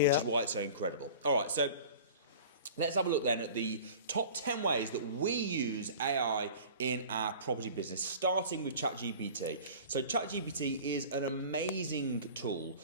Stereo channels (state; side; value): inverted; both; correlation -0.40